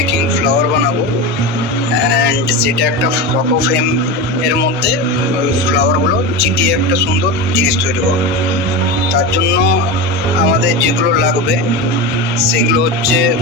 flower বানাবো অ্যান্ড সেটা একটা ফটো ফ্রেম এর মধ্যে ওই ফ্লাওয়ারগুলো চিটিয়ে একটা সুন্দর জিনিস তৈরি করবো। তার জন্য আমাদের যেগুলো লাগবে সেগুলো হচ্ছে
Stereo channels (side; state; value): both; normal; correlation 0.22